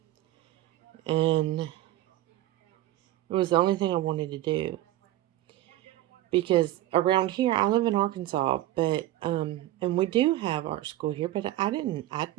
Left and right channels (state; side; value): quieter; left; 15.0 dB